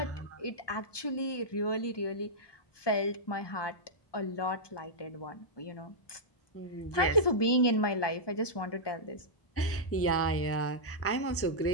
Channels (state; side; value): late; right; 1.2 ms